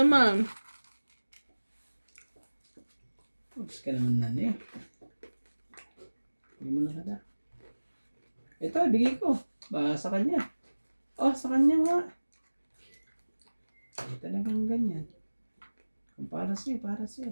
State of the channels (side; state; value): both; inverted; correlation -1.00